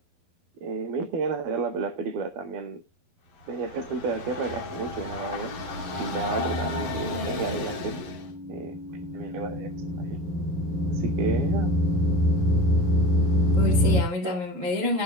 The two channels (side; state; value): left; late; 11 ms